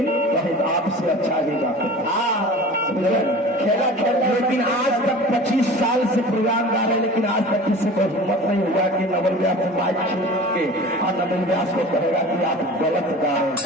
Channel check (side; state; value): both; normal; correlation 0.39